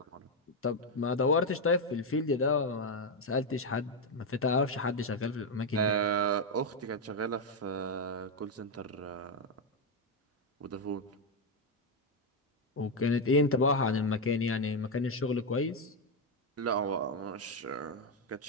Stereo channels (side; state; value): both; normal; correlation 0.04